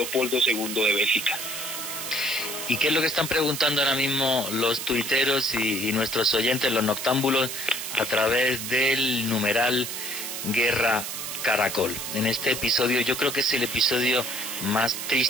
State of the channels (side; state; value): right; noise; hiss, 6 dB below the sound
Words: II de Bélgica. ¿Y qué es lo que están preguntando ahora mismo los tuiteros y nuestros oyentes, los noctámbulos, a través del numeral Guerra Caracol? En este episodio, yo creo que es el episodio más